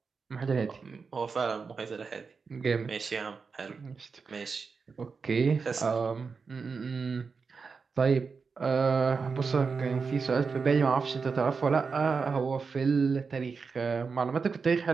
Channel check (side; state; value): left; quieter; 5.0 dB